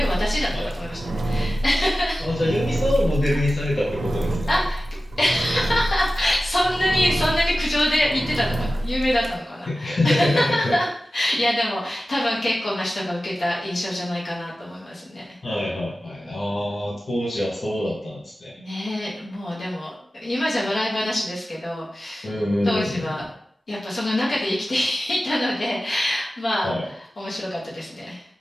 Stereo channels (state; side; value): normal; both; correlation 0.95